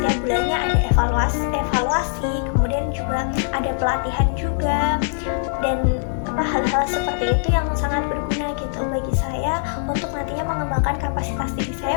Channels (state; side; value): silent; right; digital silence